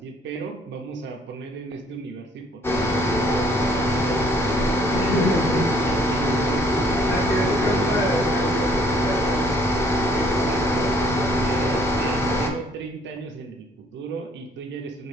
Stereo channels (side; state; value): both; normal; correlation 0.62